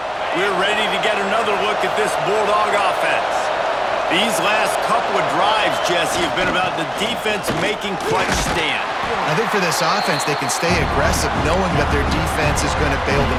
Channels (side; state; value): both; identical; correlation 1.00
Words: We're ready to get another look at this Bulldog offense. These last couple of drives, Jesse, have been about the defense making clutch stand. I think for this offense, they can stay aggressive knowing that their defense is going to bail